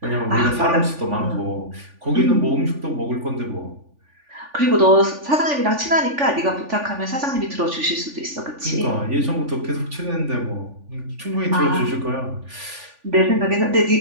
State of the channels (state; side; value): late; left; 3.5 ms